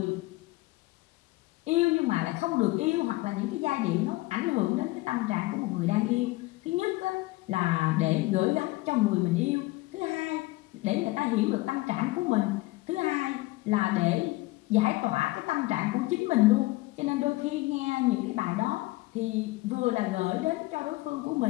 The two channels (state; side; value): quieter; right; 20.6 dB